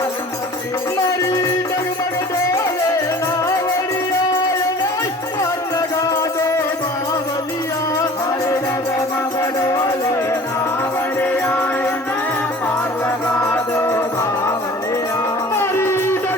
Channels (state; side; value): normal; both; correlation 0.45